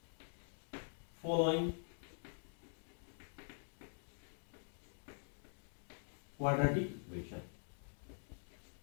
following quadratic equation.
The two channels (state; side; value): silent; right; digital silence